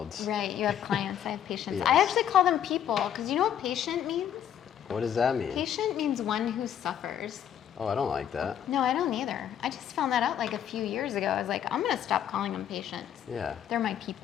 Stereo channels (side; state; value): right; quieter; 9.7 dB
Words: Right, you have clients, I have patients. Yes. I actually call them people, because you know what patient means? What does that mean? Patient means one who suffers. Oh, I don't like that. No, I don't either. I just found that out like a few years ago. I was like, I'm gonna stop calling them patients. Yeah. They're my